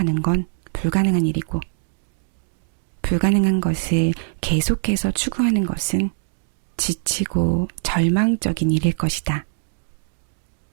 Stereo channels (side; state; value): left; silent; digital silence